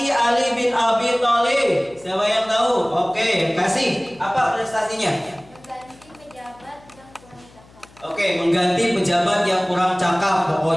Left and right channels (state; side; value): noise; left; hum, 26 dB below the sound